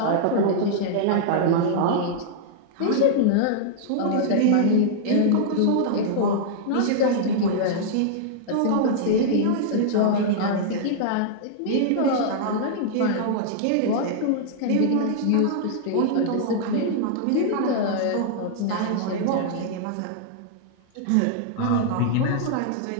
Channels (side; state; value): both; different; correlation -0.01